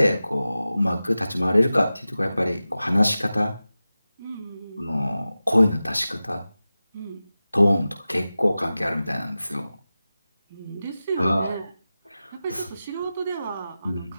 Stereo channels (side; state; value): both; inverted; correlation -0.95